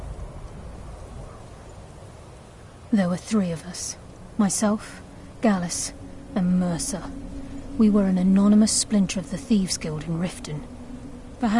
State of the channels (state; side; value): identical; both; correlation 1.00